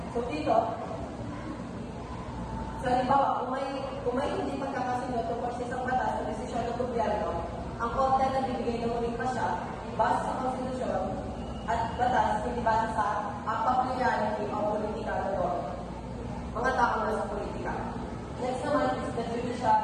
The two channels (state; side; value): identical; both; correlation 1.00